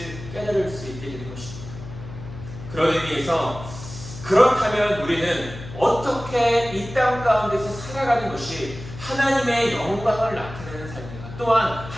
깨달을 수 있게 되는 것입니다. 그런 의미에서 그렇다면 우리는 어떻게 이 땅 가운데서 살아가는 것이 하나님의 영광을 나타내는 삶인가, 또한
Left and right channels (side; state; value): left; noise; hum, 12 dB below the sound